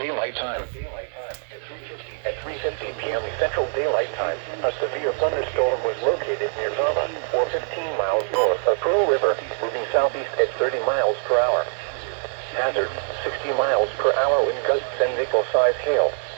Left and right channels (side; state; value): left; silent; digital silence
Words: Time. At 3:50 p.m. Central Daylight Time, a severe thunderstorm was located near Burma, or 15 miles north of Pearl River, moving southeast at 30 miles per hour. Hazard, 60 miles per hour wind gusts and nickel-sized hail.